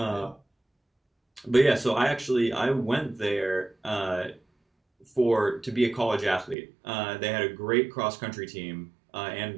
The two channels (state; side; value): drops out; left; at 6.6 s